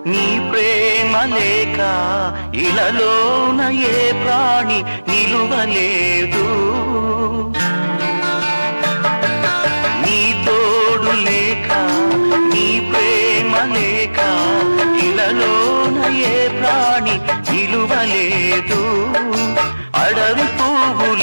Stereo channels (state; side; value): inverted; both; correlation -1.00